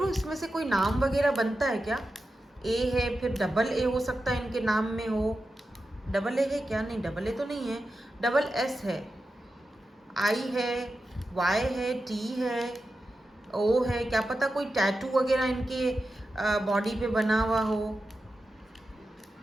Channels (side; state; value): both; normal; correlation 0.91